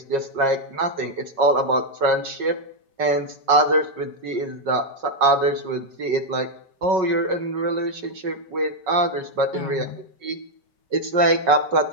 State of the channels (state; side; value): late; left; 5.4 ms